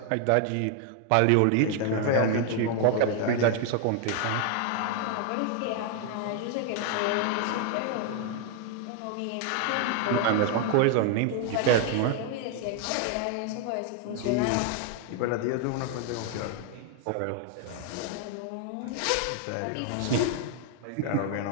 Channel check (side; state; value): both; different; correlation 0.00